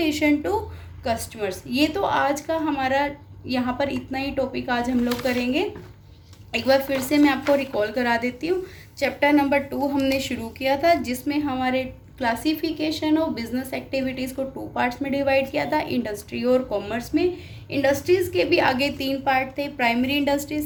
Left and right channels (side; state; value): both; identical; correlation 1.00